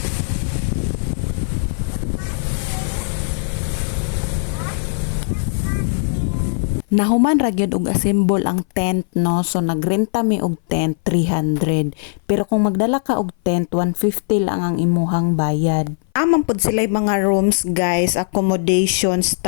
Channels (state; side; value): silent; right; 59 dB below the other